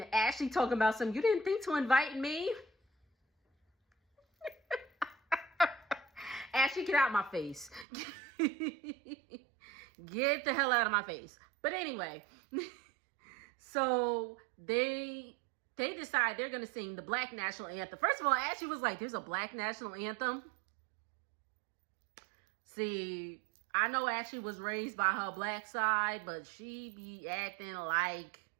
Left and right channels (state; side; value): drops out; left; at 7.9 s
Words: Ashley talking about you didn't think to invite me? Ashley, get out my face. Get the hell out of my face. But anyway, so they decide they're going to sing the Black National Anthem. First of all, Ashley was like, there's a Black National Anthem? See, I know Ashley was raised by her black side, but she be acting like...